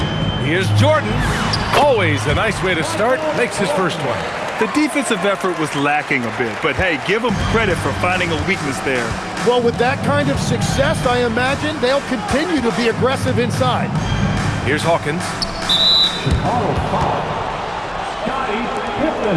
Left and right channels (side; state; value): both; identical; correlation 1.00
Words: Here's Jordan. Always a nice way to start. Makes his first one. The defensive effort was lacking a bit, but hey, give them credit for finding a weakness there. Well, with that kind of success, I imagine they'll continue to be aggressive inside. Here's Hawkins. Chicago foul. Scottie